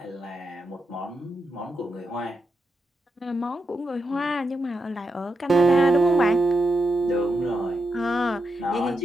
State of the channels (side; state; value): both; normal; correlation 0.85